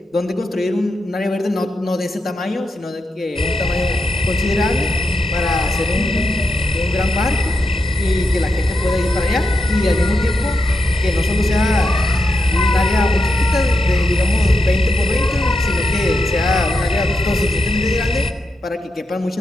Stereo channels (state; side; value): normal; both; correlation 0.85